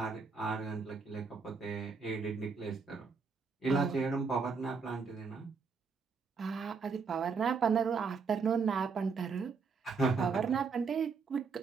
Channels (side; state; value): left; quieter; 5.1 dB